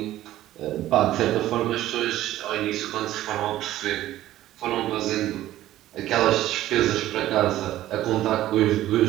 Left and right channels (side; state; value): left; quieter; 14.2 dB